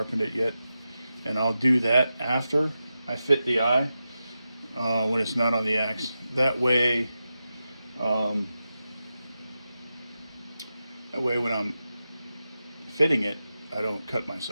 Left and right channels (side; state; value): both; inverted; correlation -0.91